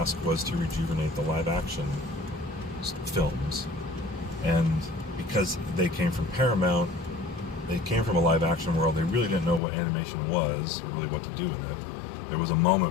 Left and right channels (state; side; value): drops out; right; at 9.6 s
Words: was to rejuvenate the live-action films. And because they came from Paramount, they came from a live-action world, they really didn't know what animation was, or really what to do with it. There was a